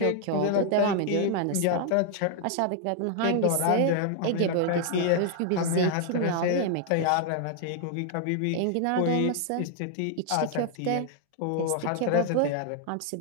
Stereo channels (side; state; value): both; different; correlation 0.00